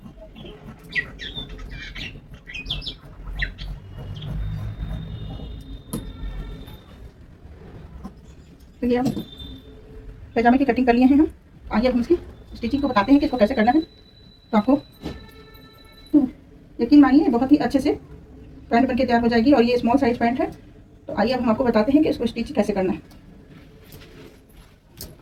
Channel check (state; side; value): identical; both; correlation 1.00